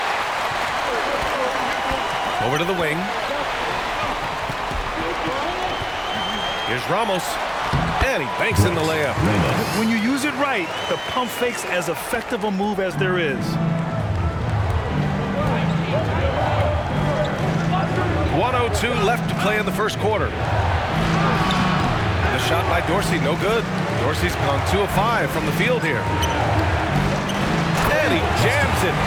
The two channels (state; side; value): identical; both; correlation 1.00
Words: Over to the wing. Here's Ramos. And he banks in the layup. When you use it right, the pump fake's as effective a move as there is. 1:02 left to play in the first quarter. The shot by Dorsey, no good. Dorsey's gone 2 of 5 from the field here. And he jams it